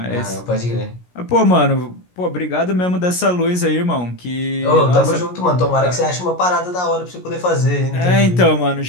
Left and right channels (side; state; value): right; late; 17 ms